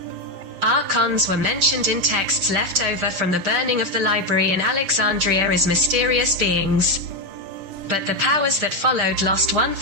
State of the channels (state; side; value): late; left; 6.4 ms